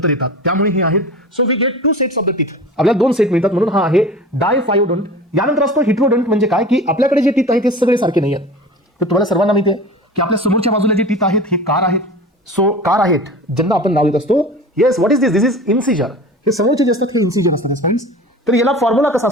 येतात. त्यामुळे हे आहेत. So we get 2 sets of the teeth. आपल्याला 2 सेट मिळतात, म्हणून हा आहे डायफायोडोंट. यानंतर असतो हिट्रोडंट म्हणजे काय की आपल्याकडे जे टीथ आहेत ते सगळे सारखे नाही आहेत. तर तुम्हाला सर्वांना माहिती आहे की आपल्या समोरच्या बाजूला जे टीथ आहेत हे कार आहेत. सो कार आहेत ज्यांना आपण नाव देत असतो. Yes, what is this? This is incisor. हे समोरचे जे असतात हे इन्सिजर असतात फ्रेंड्स. तर याला फॉर्म्युला कसा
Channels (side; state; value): both; normal; correlation 0.36